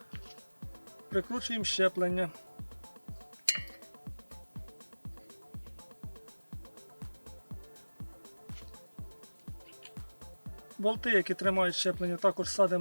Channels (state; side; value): inverted; both; correlation -1.00